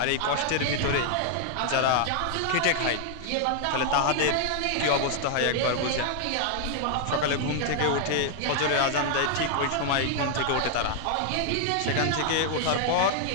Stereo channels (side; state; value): both; different; correlation 0.00